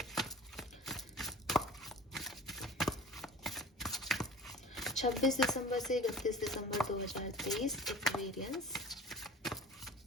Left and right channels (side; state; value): both; normal; correlation 0.40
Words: 26 दिसंबर से 31 दिसंबर 2023 Aquarians.